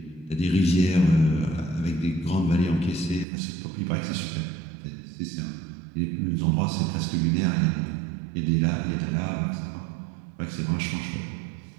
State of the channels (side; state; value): left; drops out; at 3.2 s